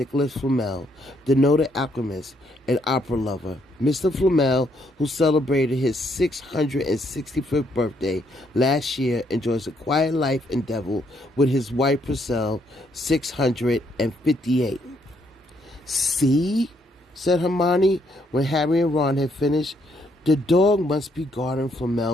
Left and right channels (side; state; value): both; normal; correlation 0.72